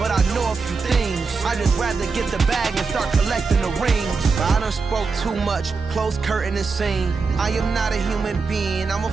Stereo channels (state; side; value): quieter; left; 4.6 dB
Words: I know a few things. I just rather get the bag and start collecting the rings. I done spoke too much, close curtain and scene. I am not a human being, I'm a